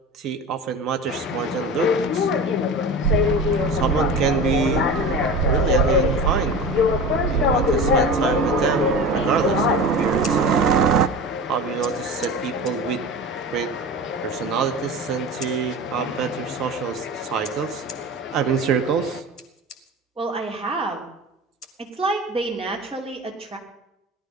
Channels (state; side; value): normal; both; correlation 0.32